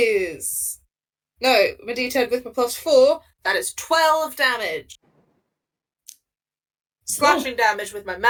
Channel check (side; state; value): both; identical; correlation 1.00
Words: No, my d10 with my +4. That is 12 damage. Slashing damage with my